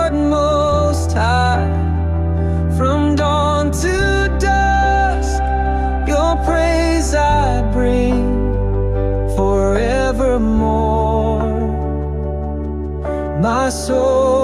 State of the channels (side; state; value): both; identical; correlation 1.00